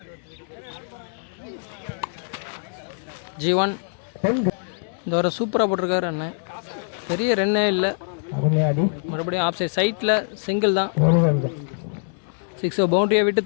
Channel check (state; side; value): silent; right; digital silence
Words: G1 இந்த வர சூப்பராக போட்டிருக்காரு அண்ணன். பெரிய ரன்னே இல்லை. மறுபடியும் ஆஃப் சைட் சைட்டில் சிங்கிள் தான். 6 பவுண்டரியை விட்டு